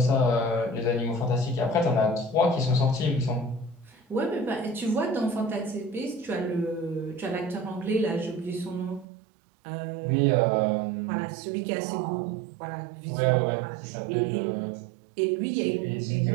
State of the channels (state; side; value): drops out; left; at 9.1 s